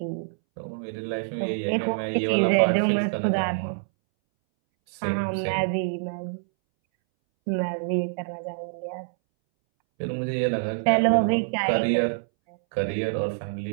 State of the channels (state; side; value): silent; left; 61 dB below the other